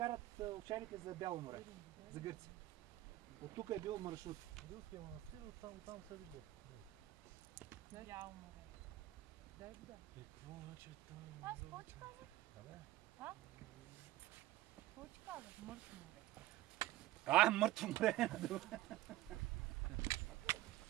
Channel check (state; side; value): quieter; left; 15.9 dB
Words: овчарите за Бяло море, за Гърция. От тук е бил маршрут. Руския манастир, там се види. Бяло море. Да. И какво значи там? Аз какво ти казах? Абе? А? Какво ти казах? Мъртво море. Мъртво море.